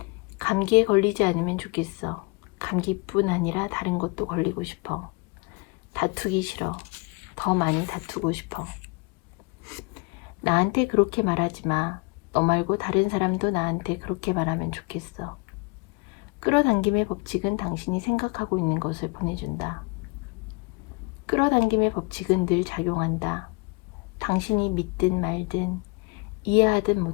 감기에 걸리지 않으면 좋겠어. 감기뿐 아니라 다른 것도 걸리고 싶어. 다투기 싫어. 더 많이 다투고 싶어. 나한테 그렇게 말하지 마. 너 말고 다른 사람도 나한테 그렇게 말하면 좋겠어. 끌어당김의 법칙은 당신이 생각하고 있는 것을 보내준다. 끌어당김의 법칙은 늘 작용한다. 당신이 믿든 말든 이해하든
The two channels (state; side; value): quieter; right; 29.4 dB